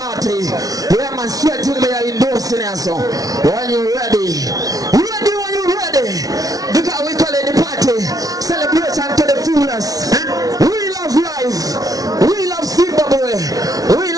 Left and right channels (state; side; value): late; left; 0.18 ms